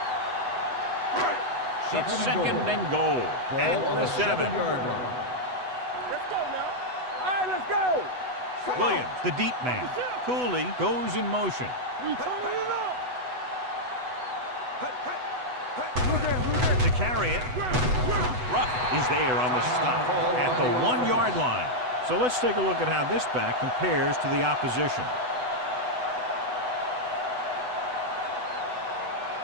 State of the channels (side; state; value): left; late; 8.0 ms